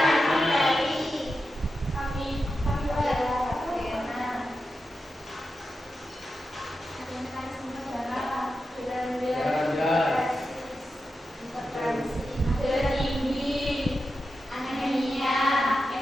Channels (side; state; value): both; normal; correlation 0.90